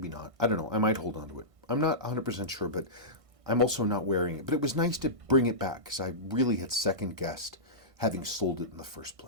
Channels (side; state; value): left; late; 1.5 ms